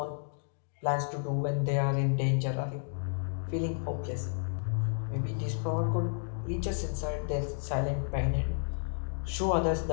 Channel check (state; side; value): silent; right; digital silence